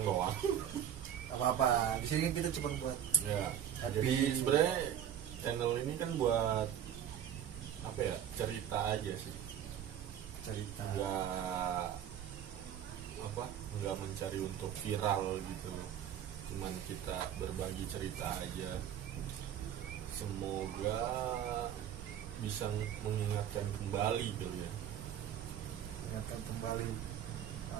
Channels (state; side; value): quieter; left; 9.9 dB